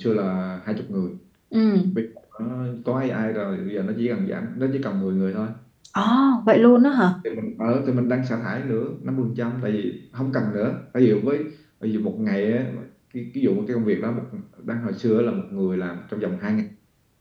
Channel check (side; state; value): both; identical; correlation 1.00